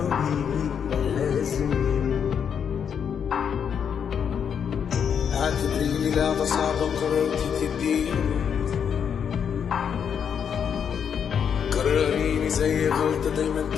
لازم يموت. اعتبريني لعبة صعبة قررتي تديني، قرريني زي غلطة دايما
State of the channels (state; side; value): quieter; right; 7.6 dB